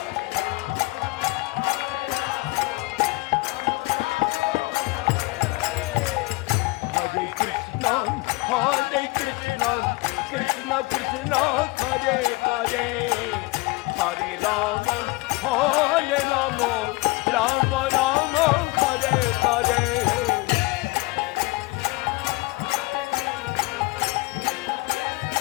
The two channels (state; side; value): quieter; right; 23.1 dB